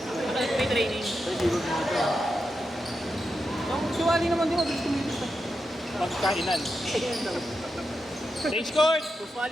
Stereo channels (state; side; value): normal; both; correlation 0.87